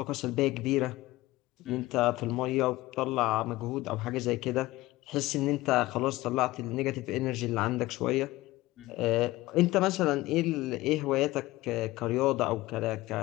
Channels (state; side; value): quieter; right; 18.5 dB